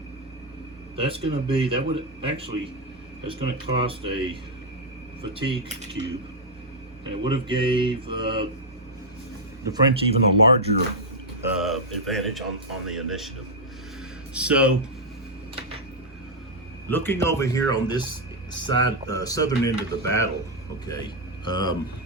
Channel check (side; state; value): both; normal; correlation -0.02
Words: that's going to be, that would actually, that's going to cost a fatigue cube, and it would have gave the French even a larger advantage on the initiative. So looking over here on this side, southern end of the battle, okay,